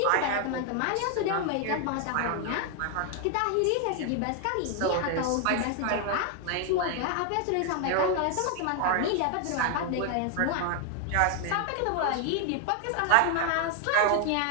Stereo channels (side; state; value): both; different; correlation 0.00